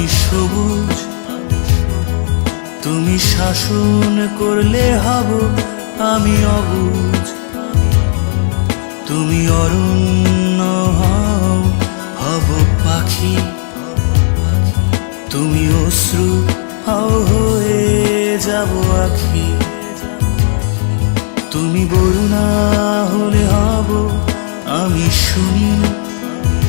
সবুজ, তুমি শাসন করলে হব আমি অবুঝ, তুমি অরণ্য হব পাখি, তুমি অশ্রু হয়ে যাব আখি, তুমি বরুণা হলে হব আমি সুনীল,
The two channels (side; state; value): right; silent; 72 dB below the other